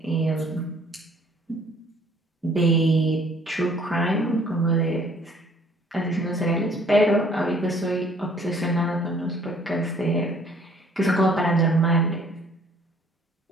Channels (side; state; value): both; normal; correlation 0.58